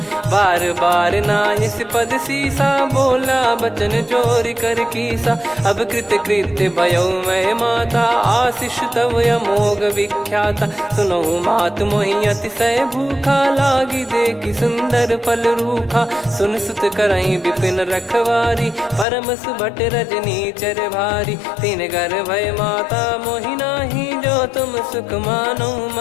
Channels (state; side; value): drops out; right; at 19.1 s